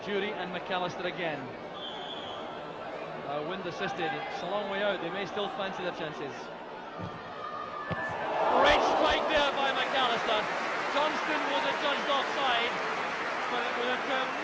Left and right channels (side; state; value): both; identical; correlation 1.00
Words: Jury and McAllister again. Wind assisted, it's a long way out, they may still fancy their chances. Great strike there by McAllister. Johnston was adjudged offside, but it was a